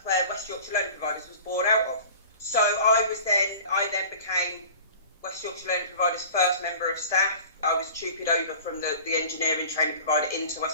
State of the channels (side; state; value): both; inverted; correlation -0.42